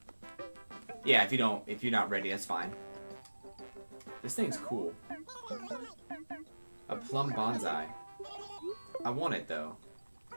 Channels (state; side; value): inverted; both; correlation -1.00